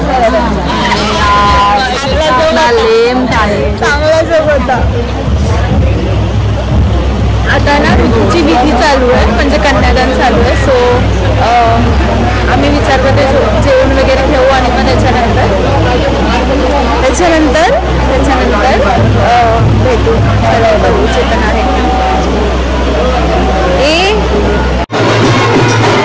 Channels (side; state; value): both; identical; correlation 1.00